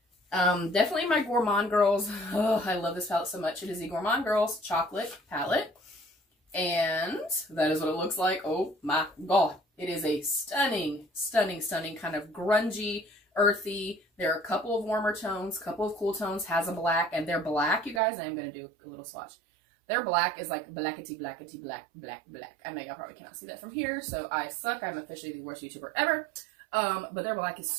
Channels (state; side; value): drops out; left; at 18.0 s